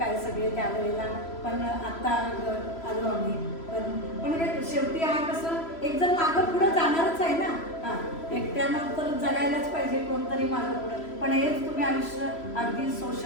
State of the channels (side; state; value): right; late; 3.0 ms